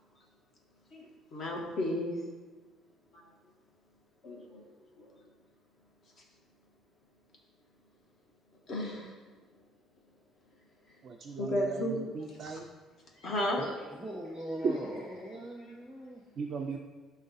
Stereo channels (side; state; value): both; normal; correlation 0.63